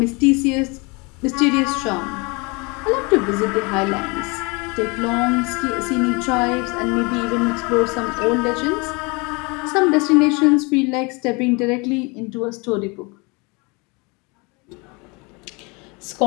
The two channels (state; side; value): quieter; right; 28.6 dB